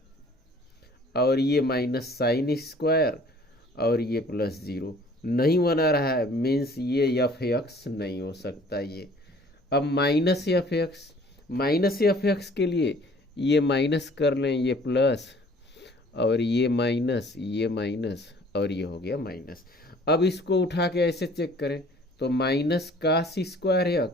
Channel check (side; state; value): both; normal; correlation 0.53